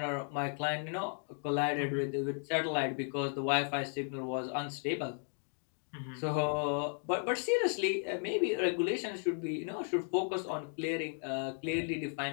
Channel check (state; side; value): silent; right; 54 dB below the other